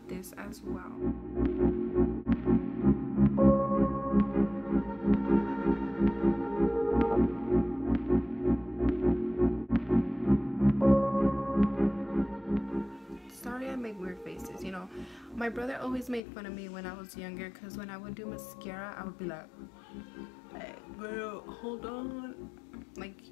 this as well. Sorry, I make weird faces. You know, my brother always made fun of me when I was younger because when I would do mascara, I would be like, "Hey, girl, hold on." Like,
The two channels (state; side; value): drops out; right; at 16.2 s